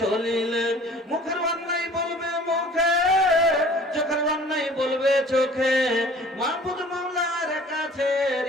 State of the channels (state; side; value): normal; both; correlation 0.49